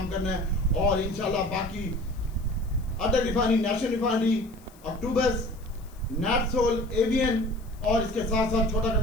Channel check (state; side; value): noise; left; hiss, 27 dB below the sound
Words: करना है। और इंशाल्लाह बाकी अटल रिफाइनरी, नेशनल रिफाइनरी, अक्टूबस, नैट्सोल, ABN और इसके साथ साथ छोटा